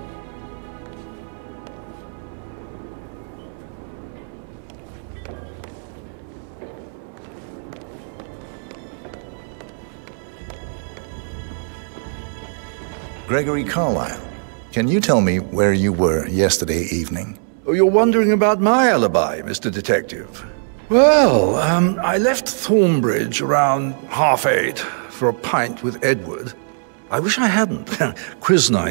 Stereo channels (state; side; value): silent; left; 65 dB below the other